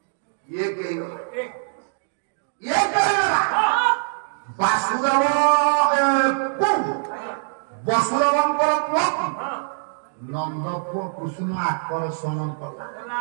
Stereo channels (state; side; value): silent; left; digital silence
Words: वासुदेव वसुदेव नंद पुओ कृष्ण आकर्षण कला